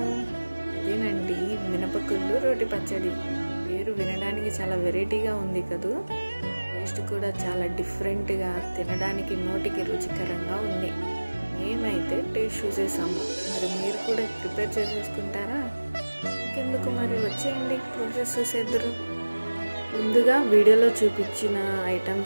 అదేనండి మినపగుళ్ళు రోటి పచ్చడి. పేరు వినడానికి చాలా వెరైటీగా ఉంది కదూ. టేస్ట్ కూడా చాలా డిఫరెంట్గా, తినడానికి నోటికి రుచికరంగా ఉంది. మేమైతే టేస్ట్ చూసేసాము. మరి మీరు కూడా ప్రిపేర్ చేసేసుకుంటారా? ఇంకెందుకు మరి వచ్చేయండి, ప్రాసెస్ చూసేద్దరు. ముందుగా వీడియోలో చూపించిన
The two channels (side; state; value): both; inverted; correlation -1.00